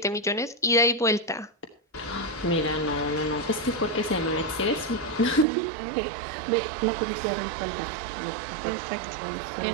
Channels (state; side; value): drops out; left; at 5.5 s